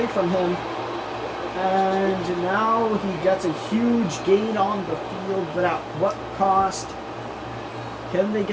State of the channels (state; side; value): identical; both; correlation 1.00